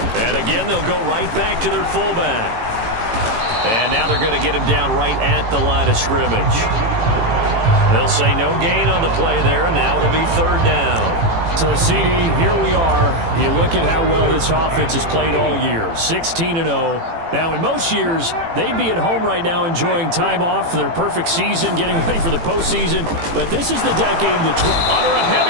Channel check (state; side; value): late; left; 18 ms